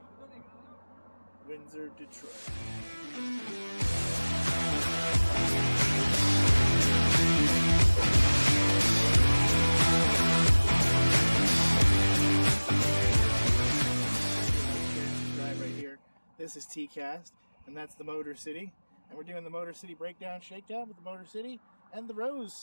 Windsor, Detroit. Right here. This is T-Cast, and that's the Motor City. And we're doing the Motor City breakdown shakedown with the Motor City and the Rose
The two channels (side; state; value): both; inverted; correlation -1.00